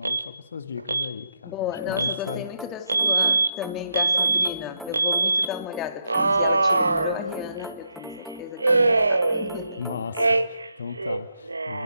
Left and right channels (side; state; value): both; inverted; correlation -0.81